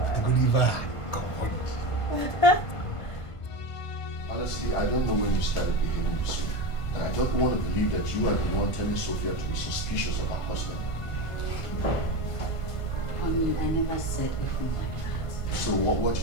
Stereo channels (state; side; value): late; right; 1.5 ms